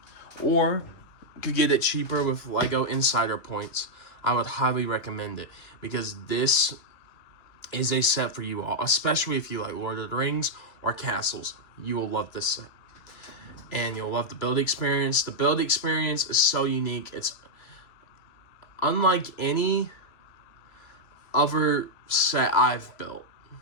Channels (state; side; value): late; right; 2.6 ms